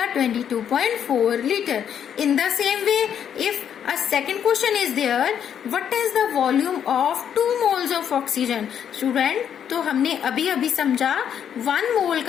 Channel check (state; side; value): quieter; right; 8.8 dB